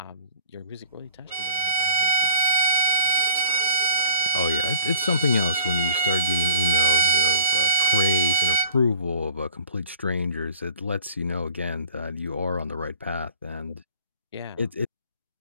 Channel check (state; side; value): inverted; both; correlation -0.46